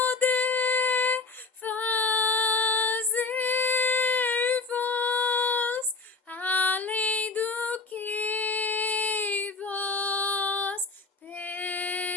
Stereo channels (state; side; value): quieter; right; 4.0 dB